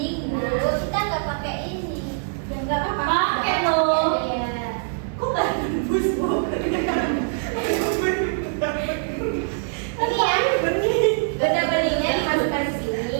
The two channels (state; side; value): silent; left; digital silence